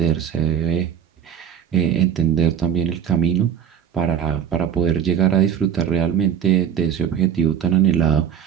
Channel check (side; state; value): left; quieter; 8.7 dB